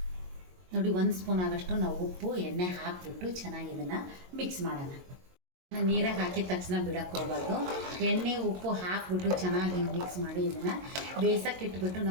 ನೋಡಿ, 1 ಸ್ಪೂನ್ ಆಗಷ್ಟು ನಾವು ಉಪ್ಪು ಎಣ್ಣೆ ಹಾಕಿಬಿಟ್ಟು ಚೆನ್ನಾಗಿ ಇದನ್ನು ಮಿಕ್ಸ್ ಮಾಡೋಣ. ನೀರಾಗಿ ಹಾಕಿದ ತಕ್ಷಣ ಬಿಡೋಕ್ಕೆ ಹೋಗಬಾರ್ದು. ಎಣ್ಣೆ ಉಪ್ಪು ಹಾಕಿಬಿಟ್ಟು ಚೆನ್ನಾಗಿ ಮಿಕ್ಸ್ ಮಾಡಿ ಇದನ್ನು ಬೇಯಿಸೋಕೆ ಇಟ್ಬಿಟ್ಟು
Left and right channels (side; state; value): left; late; 22 ms